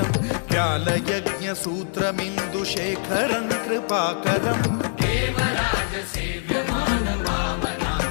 व्यालयज्ञ सूत्रमिन्दुशेखरं कृपाकरं देवराज सेव्यमान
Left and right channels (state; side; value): silent; right; digital silence